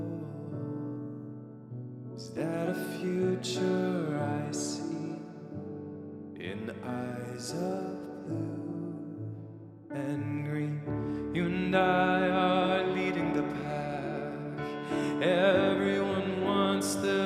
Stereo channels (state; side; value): identical; both; correlation 1.00